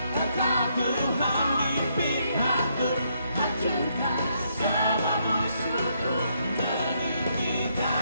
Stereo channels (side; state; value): both; inverted; correlation -0.74